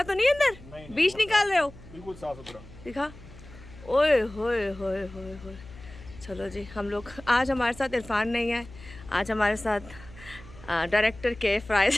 तो नहीं अंदर? नहीं, बीज निकाल रहे हो? बिल्कुल साफ सुथरा। दिखा। ओए होए होए होए होए। चलो जी, हम लोग आज हमारे साथ इरफान नहीं है, आज हमारे साथ डायरेक्टर के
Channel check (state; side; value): noise; left; hum, 18 dB below the sound